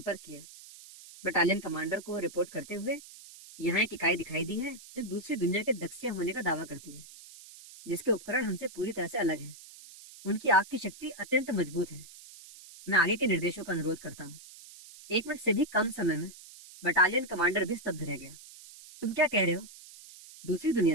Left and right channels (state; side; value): noise; right; hiss, 18 dB below the sound